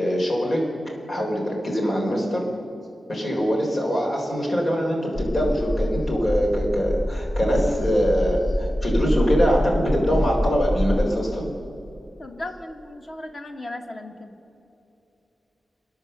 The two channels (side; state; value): both; normal; correlation 0.94